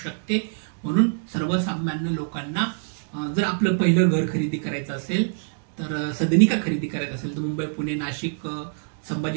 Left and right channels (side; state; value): left; silent; digital silence